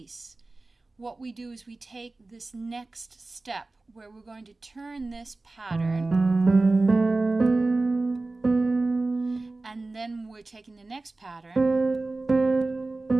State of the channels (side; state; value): left; quieter; 3.2 dB